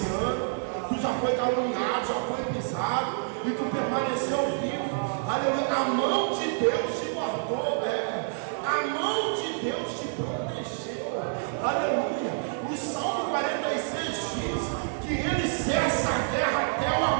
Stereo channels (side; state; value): left; silent; digital silence